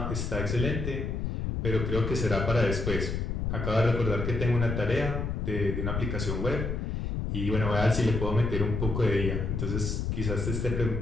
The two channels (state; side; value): noise; left; rumble, 2 dB below the sound